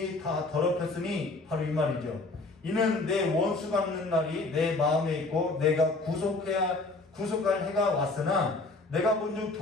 다 더럽혔으니 바로 이 말이죠. 이는 내 원수 갚는 날이 내 마음에 있고 내가 구속할 해가 왔으나 내가 본즉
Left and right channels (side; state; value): right; quieter; 3.3 dB